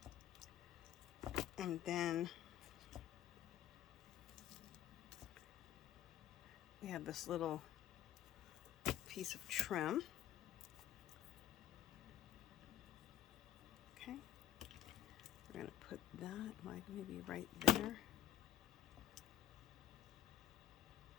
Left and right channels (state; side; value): quieter; right; 12.1 dB